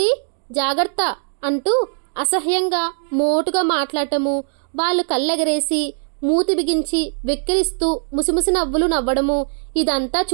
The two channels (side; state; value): left; silent; digital silence